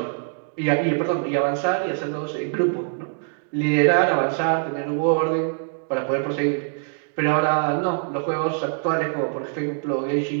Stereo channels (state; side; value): silent; left; digital silence